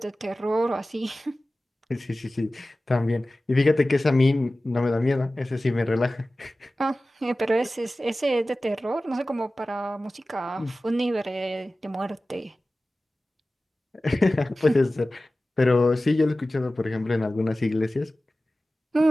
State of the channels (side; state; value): both; normal; correlation 0.96